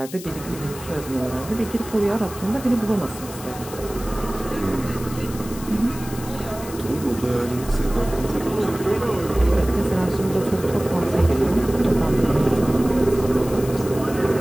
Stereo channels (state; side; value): noise; left; hiss, 15 dB below the sound